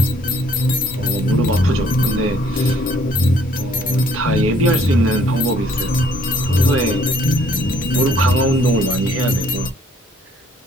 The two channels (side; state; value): both; normal; correlation 0.63